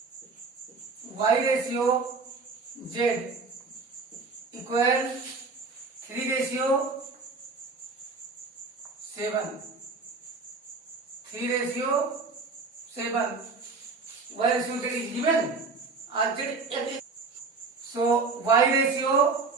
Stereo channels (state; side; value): quieter; left; 4.3 dB